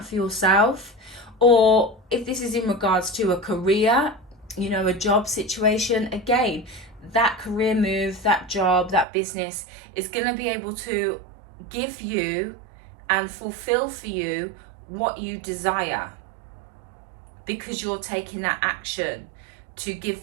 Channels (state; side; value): drops out; left; at 9.1 s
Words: for yourself. Or if this is in regards to a career, a job situation, again, that career move, that job, that business is going to be able to give you and fulfill for you what you desire, because you're taking that action to give